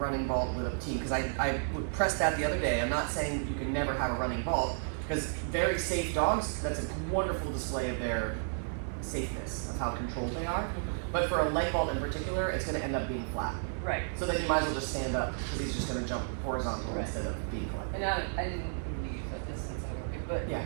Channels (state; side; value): silent; left; 56 dB below the other